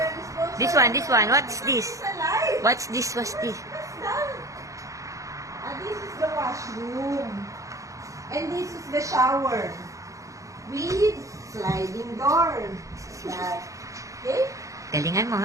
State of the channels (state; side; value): late; left; 0.16 ms